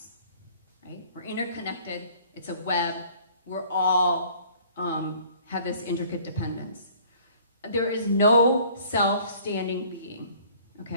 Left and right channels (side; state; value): both; inverted; correlation -0.54